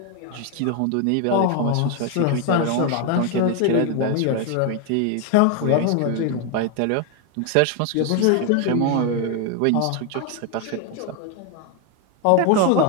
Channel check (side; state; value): both; different; correlation 0.01